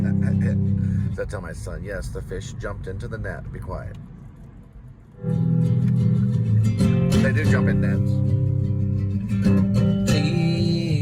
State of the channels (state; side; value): identical; both; correlation 1.00